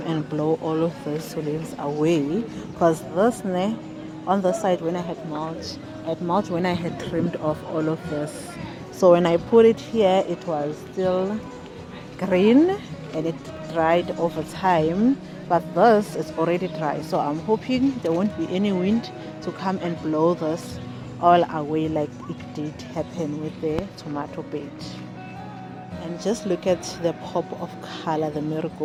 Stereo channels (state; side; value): identical; both; correlation 1.00